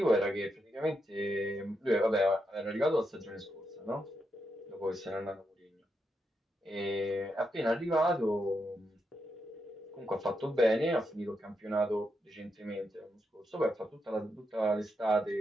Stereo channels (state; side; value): normal; both; correlation 0.83